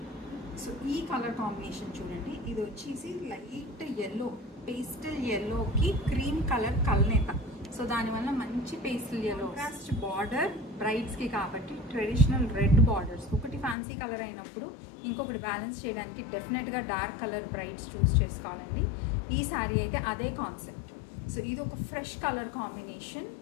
సో ఈ కలర్ కాంబినేషన్ చూడండి, ఇది వచ్చేసి లైట్ ఎల్లో, పేస్టల్ ఎల్లోకి క్రీమ్ కలర్ కల్నేత. సో దానివల్ల మంచి పేస్టల్ ఎల్లో కాస్ట్ బార్డర్ బ్రైడ్స్కి కాబట్టి ట్రెడిషనల్ రెడ్ బార్డర్స్. ఒకటి ఫ్యాన్సీ కలర్ అయినప్పుడు ఇంకొకటి బ్యాలెన్స్ చేయడానికి డెఫినెట్గా డార్క్ కలర్ బ్రైడ్స్ చూస్ చేసుకోవాలండి. ఈ శారీ అయితే అదే కాన్సెప్ట్. సో ఇది ఒక ఫ్రెష్ కలర్ కాంబినేషన్,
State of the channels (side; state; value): right; drops out; at 13.8 s